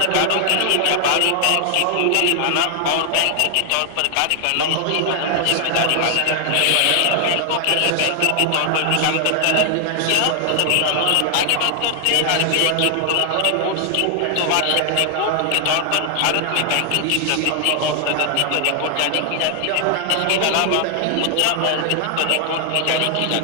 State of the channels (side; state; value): both; different; correlation 0.00